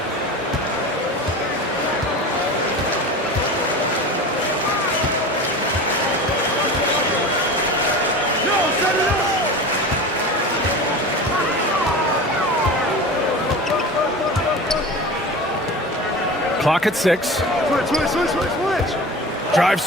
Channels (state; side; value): normal; both; correlation 0.32